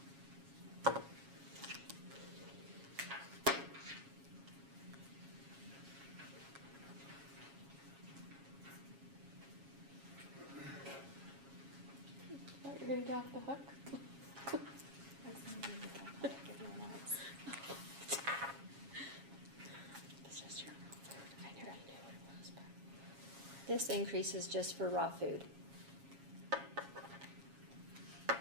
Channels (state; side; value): late; left; 7.3 ms